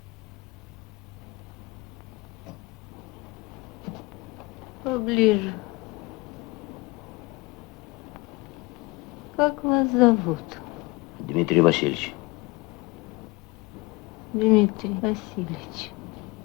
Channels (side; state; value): right; quieter; 23.2 dB